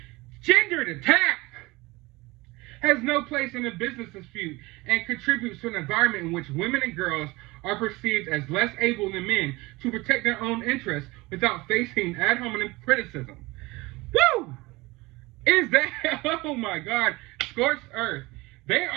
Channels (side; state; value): left; quieter; 22.1 dB